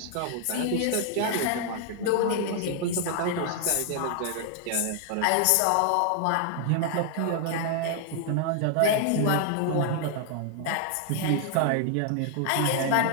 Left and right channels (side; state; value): both; different; correlation 0.00